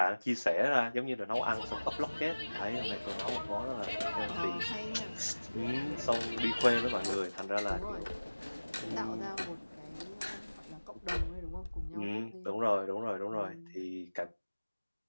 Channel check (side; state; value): both; inverted; correlation -1.00